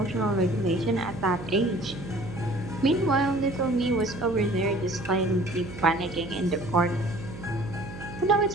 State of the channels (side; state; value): right; noise; hum, 12 dB below the sound